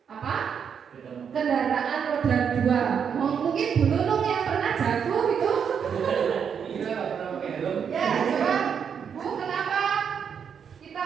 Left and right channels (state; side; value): quieter; left; 7.3 dB